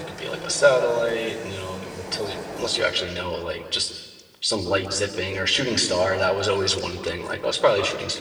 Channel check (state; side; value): identical; both; correlation 1.00